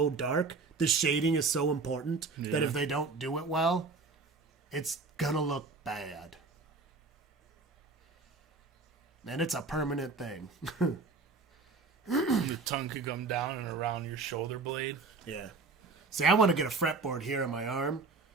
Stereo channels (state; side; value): quieter; left; 4.1 dB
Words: dark. The shading is so important that if they don't do it well, it's gonna look bad. And it's a permanent thing. Your tongue could come down and around your shoulder blade. Yeah. See, I want to get a fretboard here on my arm,